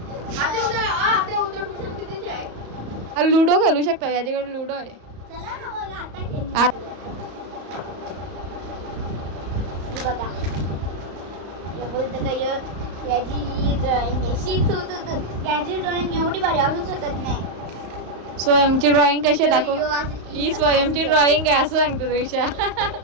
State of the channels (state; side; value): late; left; 35 ms